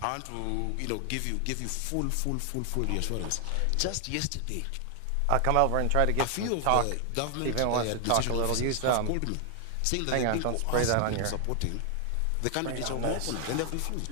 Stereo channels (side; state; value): both; different; correlation 0.00